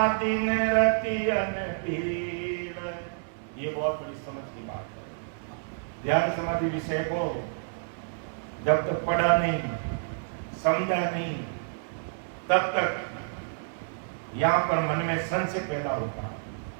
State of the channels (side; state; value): left; silent; digital silence